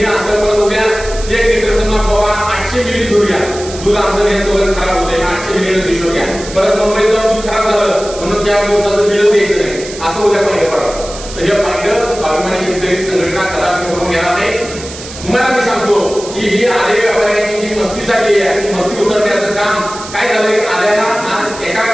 असं पण उद्या 1 लिटर समजा बाबा 800 मिली दूध घ्या दूध आमचं नेत वगैरे खराब होते 800 मिली हिशोब घ्या परत मुंबईत जाऊन दूध खराब झालं म्हणून त्या दिवसाचं बिल द्यायचं नाही असं उद्या पाहिजे पडा. तर हे पाहिजे अभिमानी शेतकरी संघटना कदापि करून घेणार नाही. तुम्हाला मी सांगतो की ही आले व्यापाऱ्यांची जी मस्ती झाली आहे ती मस्ती उतरण्याचं काम काय झालंय आल्याला आज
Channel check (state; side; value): noise; right; hiss, 13 dB below the sound